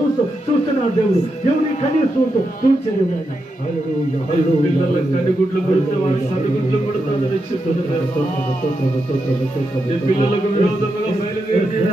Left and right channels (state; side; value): normal; both; correlation 0.86